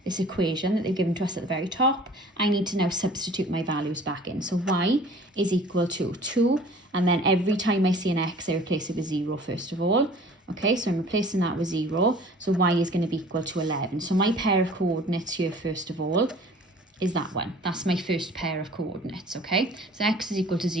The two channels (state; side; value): normal; both; correlation 0.48